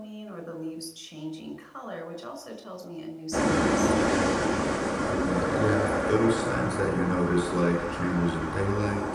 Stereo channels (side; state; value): both; identical; correlation 1.00